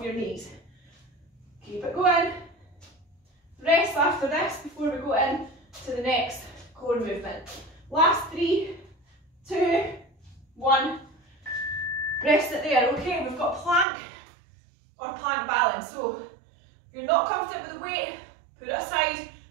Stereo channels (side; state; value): left; drops out; at 13.9 s